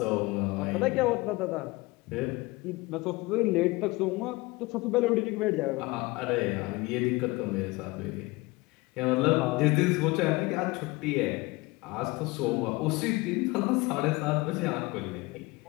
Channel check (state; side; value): quieter; right; 22.9 dB